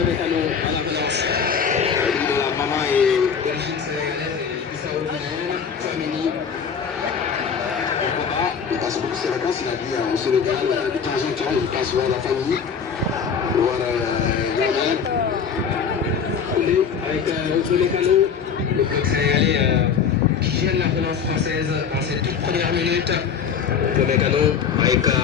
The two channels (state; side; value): quieter; right; 6.8 dB